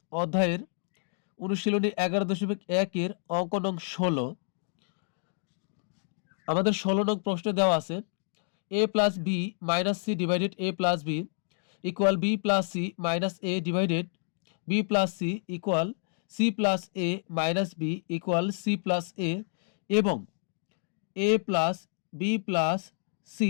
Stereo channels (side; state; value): right; silent; digital silence